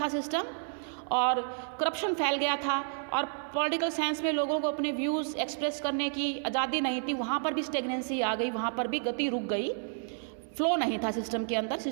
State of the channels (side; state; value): left; silent; 57 dB below the other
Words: सिस्टम और करप्शन फैल गया था, और पॉलिटिकल साइंस में लोगों को अपने व्यूज़ एक्सप्रेस करने की आज़ादी नहीं थी, वहाँ पर भी स्टेगनेंसी आ गई, वहाँ पर भी गति रुक गई, फ्लो नहीं था सिस्टम के अंदर,